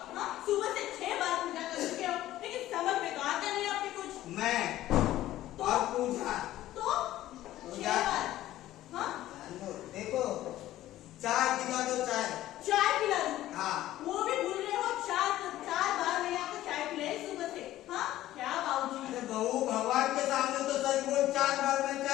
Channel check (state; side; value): quieter; right; 14.4 dB